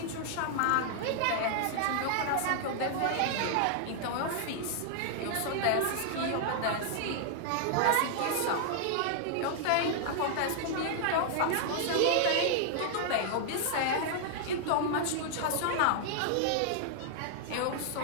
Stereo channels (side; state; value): both; different; correlation 0.00